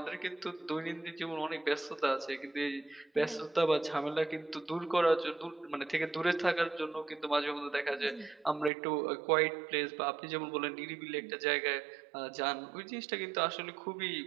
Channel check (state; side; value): drops out; left; at 8.7 s